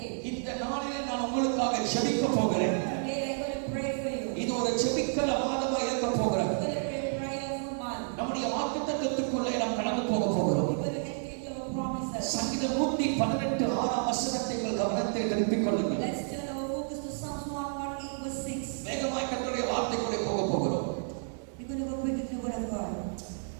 இந்த நாளிலே நான் உங்களுக்காக ஜெபிக்க போகிறேன். இது ஒரு ஜெபிக்கிற மாதமாக இருக்க போகிறது. நம்முடைய வாக்குத்தத்தத்துக்குள்ளே நாம் கடந்து போக போகிறோம். சங்கீதம் 118 6ஆம் வசனத்தை உங்கள் கவனத்தை திருப்பிக் கொள்ளுங்கள். வேகமாய் கர்த்தருடைய வார்த்தைக்குள்ளே போக போகிறோம்.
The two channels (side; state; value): left; silent; digital silence